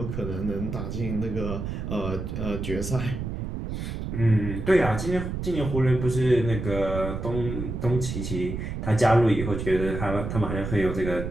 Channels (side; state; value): right; noise; rumble, 5 dB below the sound